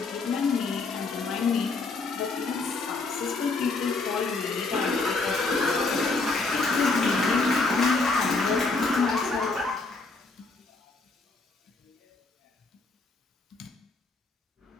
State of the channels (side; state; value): right; quieter; 3.7 dB